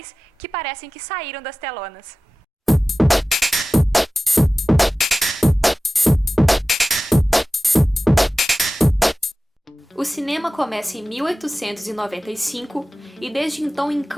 que parecem que saíram das telonas. O cinema começa em 1895 e desde então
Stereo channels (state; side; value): normal; both; correlation 0.96